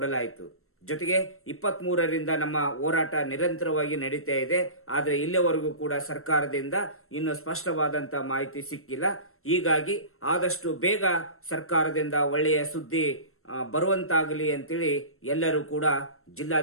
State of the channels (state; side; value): late; right; 0.62 ms